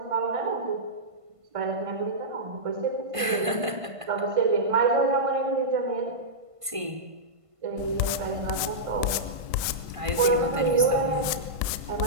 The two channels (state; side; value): late; left; 1.5 ms